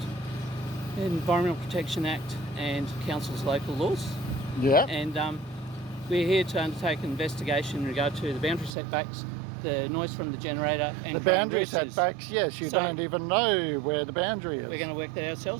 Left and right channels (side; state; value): left; drops out; at 8.8 s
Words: Environmental Protection Act and Council's local laws. Yeah. And we're here to undertake an investigation in regard to the boundary setbacks, the noise from the generator and the boundary setbacks. Yes, you don't even know where the boundary is. We're going to work that